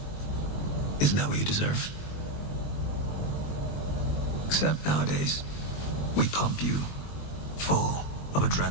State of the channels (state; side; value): late; right; 20 ms